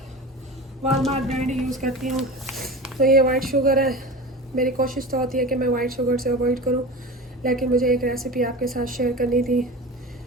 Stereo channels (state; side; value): normal; both; correlation 0.31